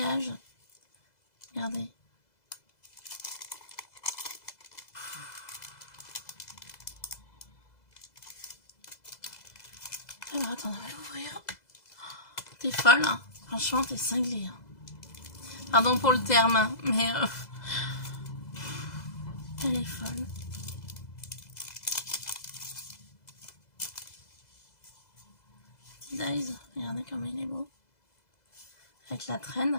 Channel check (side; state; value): right; late; 2.0 ms